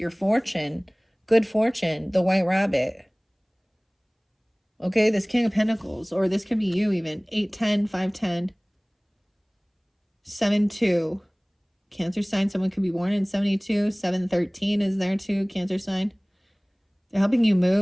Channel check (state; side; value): identical; both; correlation 1.00